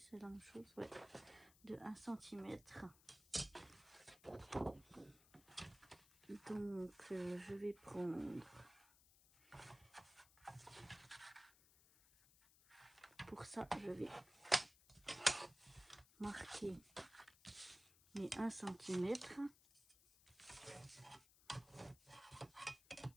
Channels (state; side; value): noise; left; hiss, 24 dB below the sound